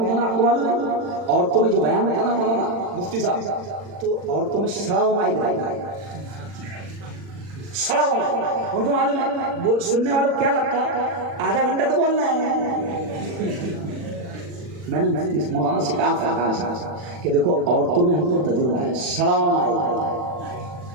نا، آپ کو معلوم ہے عورتوں میں جو بیان ہوتا نا مولانا مفتی صاحب، تو عورتوں میں سڑا ہوا مائک رہتا ہے، سڑا ہوا مائک، ان کو معلوم ہے، سننے والوں کو کیا لگتا ہے آدھا گھنٹہ تو بولنا ہے۔ میں نے مولانا سے کہا کہ دیکھو عورتوں میں ہم کو تجربہ ہے، سڑا ہوا مائک رہتا ہے،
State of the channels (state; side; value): late; left; 40 ms